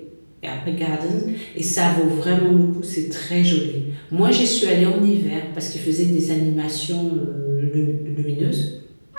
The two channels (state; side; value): inverted; both; correlation -1.00